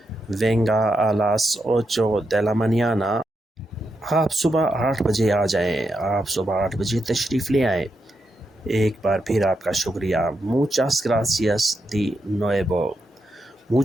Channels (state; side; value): normal; both; correlation 0.84